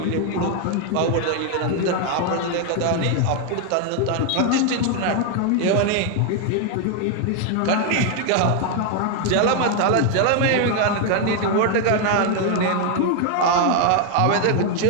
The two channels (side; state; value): both; different; correlation 0.01